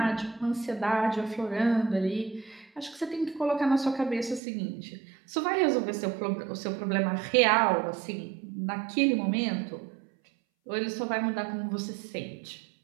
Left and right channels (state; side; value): drops out; left; at 4.4 s